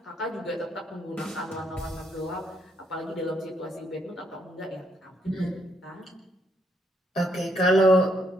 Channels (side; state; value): both; normal; correlation 0.74